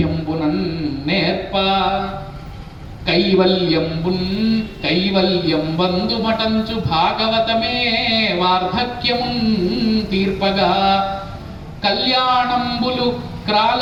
నేర్ప కైవల్యం బంధుమటంచు భాగవతమే వార్ధక్యమున్ తీర్పగా కళ్యాణంబులు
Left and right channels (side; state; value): both; identical; correlation 1.00